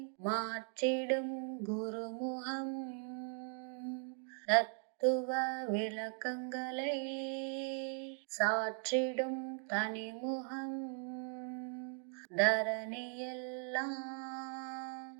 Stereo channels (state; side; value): silent; left; 52 dB below the other